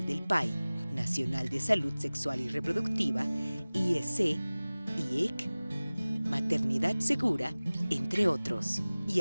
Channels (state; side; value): inverted; both; correlation -0.99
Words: del PAI, Nacional de Salud Sexual y Reproductiva, IEC, IEC, Maternidad Segura, entre otros. Y